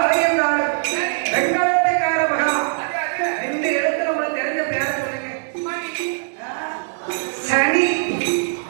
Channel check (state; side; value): silent; left; digital silence